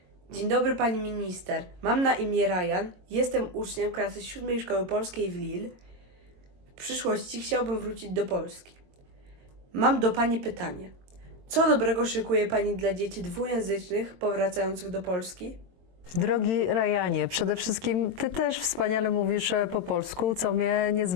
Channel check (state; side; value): late; left; 22 ms